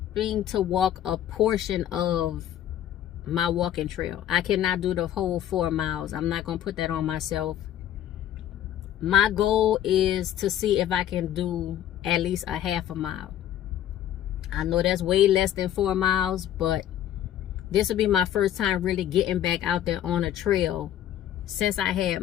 to walk a portion of my walking trail. I cannot do the whole 4 miles. I'm not gonna put that on myself. My goal is to see if I can do at least a half a mile. I know that's way less than 4 miles, but this will be my first time really getting back out there on a trail since I had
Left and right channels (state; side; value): quieter; right; 11.5 dB